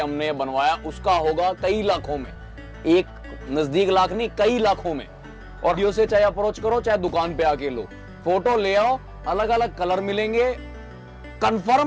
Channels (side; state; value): both; identical; correlation 1.00